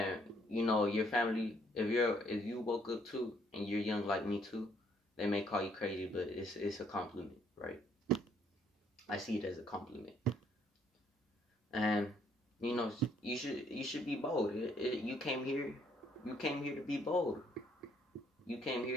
your family, if you woke up too, and you're young like me too, they may call you crazy, but it's a compliment, right? I see it as a compliment. And, you should be bold. You came here to be bold. You came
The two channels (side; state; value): both; normal; correlation 0.67